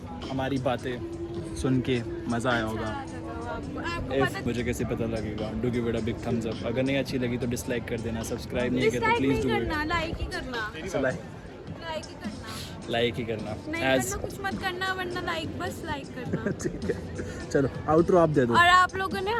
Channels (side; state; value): both; identical; correlation 1.00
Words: हमारी बातें सुन के मज़ा आया होगा। आपको इफ पता, मुझे कैसे पता लगेगा? Do give it a big thumbs up. अगर नहीं अच्छी लगी तो डिसलाइक कर देना, सब्सक्राइब नहीं किया तो डिसलाइक प्लीज़ नहीं डू करना, लाइक ही करना, इट। लाइक ही करना, लाइक ही करना नहीं एज करना कुछ मत करना, वरना लाइक, बस लाइक करना। ठीक है, चलो आउटरो आप दे दो। और आप